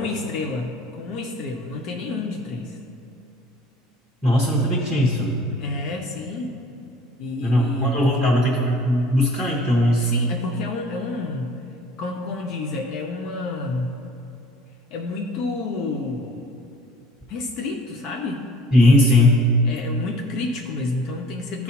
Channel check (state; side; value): normal; both; correlation 0.50